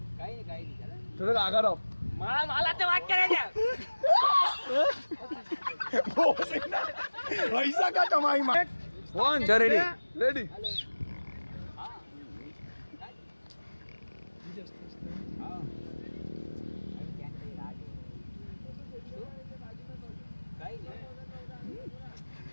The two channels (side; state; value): both; inverted; correlation -1.00